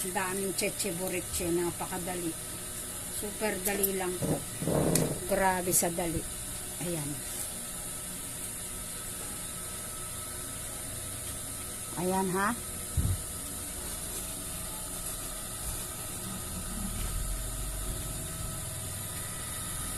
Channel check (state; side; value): identical; both; correlation 1.00